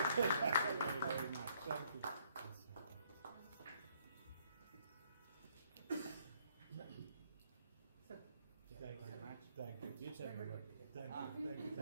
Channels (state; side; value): inverted; both; correlation -0.67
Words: very much. Thank you. Thank you very much. Thank you. You tell me what. Thank you. Thank you.